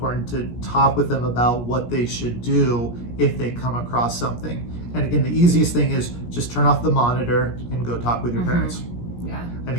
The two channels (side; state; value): right; late; 17 ms